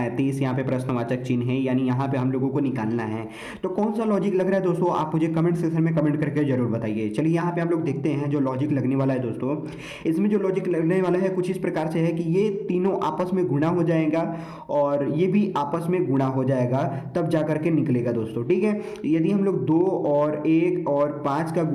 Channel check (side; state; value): both; identical; correlation 1.00